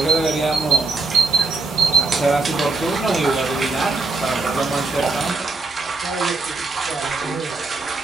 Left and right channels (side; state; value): left; quieter; 3.5 dB